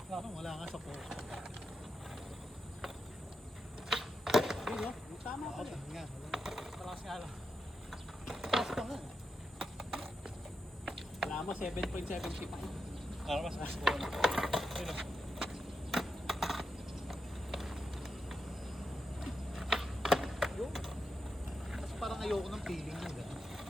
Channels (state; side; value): normal; both; correlation 0.87